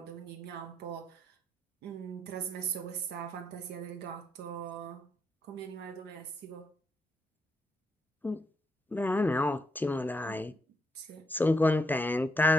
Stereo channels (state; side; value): normal; both; correlation 0.77